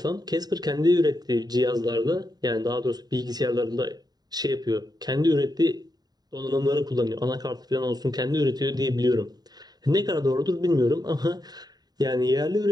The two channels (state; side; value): late; left; 0.19 ms